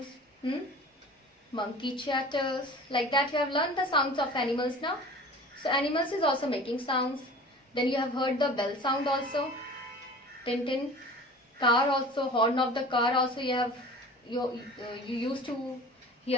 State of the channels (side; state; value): both; normal; correlation 0.41